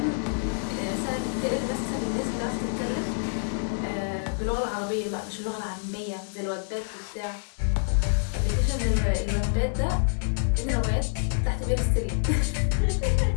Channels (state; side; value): silent; right; 60 dB below the other